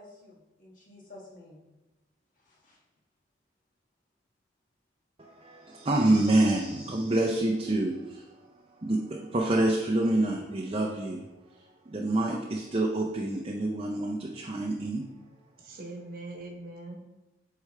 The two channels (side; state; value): both; normal; correlation 0.80